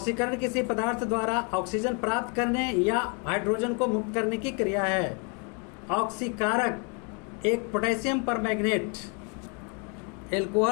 किसी पदार्थ द्वारा ऑक्सीजन प्राप्त करने या हाइड्रोजन को मुक्त करने की क्रिया है। ऑक्सीकारक एक पोटेशियम परमैंगनेट।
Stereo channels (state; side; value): quieter; right; 35.8 dB